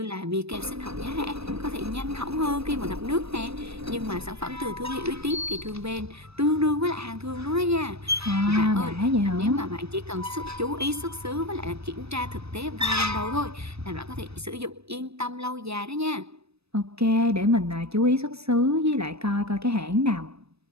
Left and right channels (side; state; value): left; late; 0.78 ms